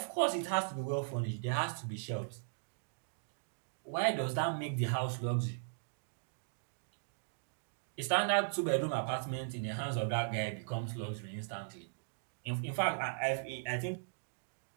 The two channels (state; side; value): silent; left; digital silence